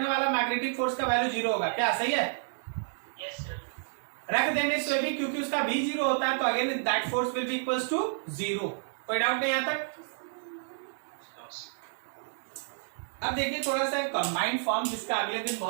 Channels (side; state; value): left; silent; digital silence